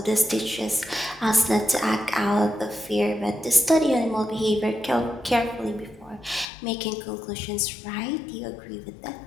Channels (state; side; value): drops out; right; at 6.5 s